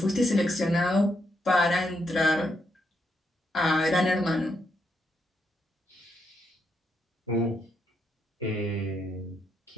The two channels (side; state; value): both; normal; correlation 0.79